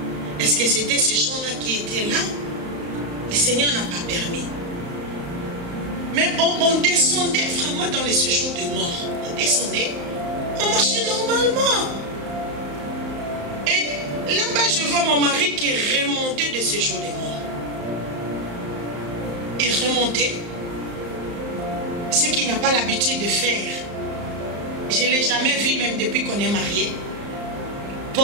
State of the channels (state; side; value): late; left; 35 ms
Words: Est-ce que c'était ces gens-là qui étaient là? Le Seigneur n'a pas permis. Mais on descendait vraiment dans les séjours de mort. On descendait, on marchait normalement. Et là-bas, je vois mon mari qui remontait de séjours de mort. Il remontait. Ce qu'il n'a pas l'habitude de faire. Je ne l'ai jamais vu, même depuis qu'on est mariés.